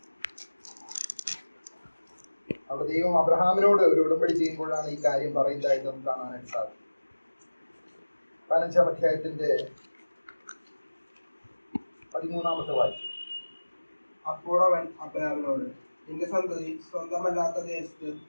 അവിടെ ദൈവം അബ്രഹാമിനോട് ഒരു ഉടമ്പടി ചെയ്യുമ്പോഴാണ് ഈ കാര്യം പറയുന്നതായിട്ട് നമുക്ക് കാണാനായിട്ട് സാധിക്കും. 15 അധ്യായത്തിന്റെ 13 വാക്യം. അപ്പോൾ അവൻ അബ്രാമിനോട്, നിന്റെ സന്തതി സ്വന്തമല്ലാത്ത ദേശത്ത്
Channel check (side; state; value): both; inverted; correlation -1.00